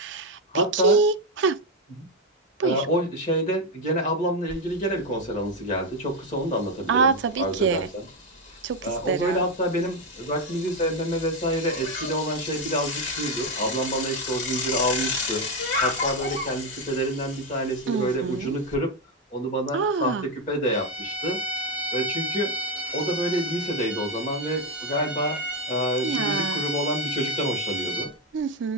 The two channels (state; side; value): normal; both; correlation 0.07